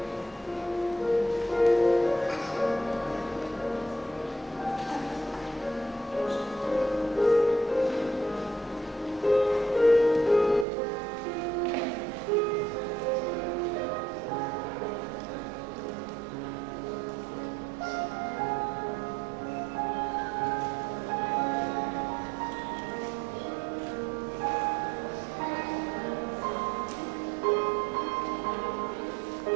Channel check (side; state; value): left; drops out; at 10.7 s